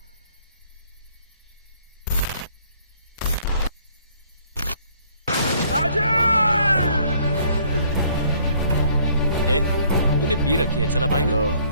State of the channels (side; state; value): both; inverted; correlation -0.61